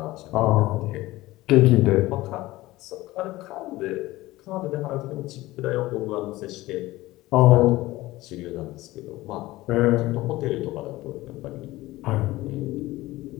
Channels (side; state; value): right; quieter; 18.3 dB